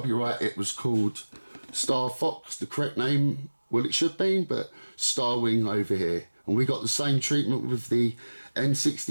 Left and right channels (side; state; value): both; inverted; correlation -1.00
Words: It was called Star Fox, the correct name, well it should be, but Star Wing over here. And we got the same treatment with the